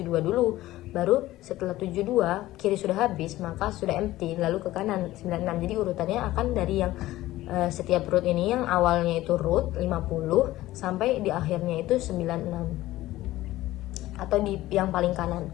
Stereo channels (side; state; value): right; quieter; 16.3 dB